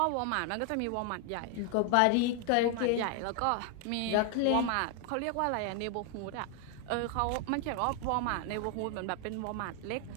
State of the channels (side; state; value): both; different; correlation 0.00